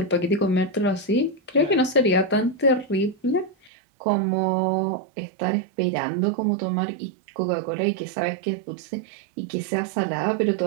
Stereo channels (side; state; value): left; drops out; at 3.7 s